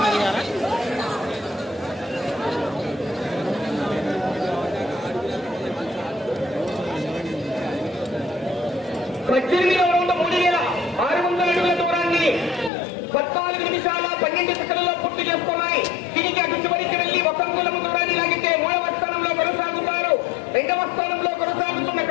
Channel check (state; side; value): drops out; right; at 12.7 s